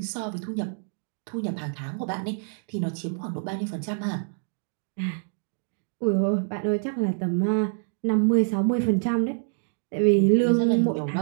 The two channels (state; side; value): silent; left; 60 dB below the other